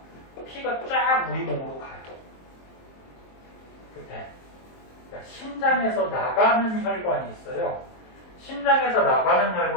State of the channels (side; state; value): right; late; 23 ms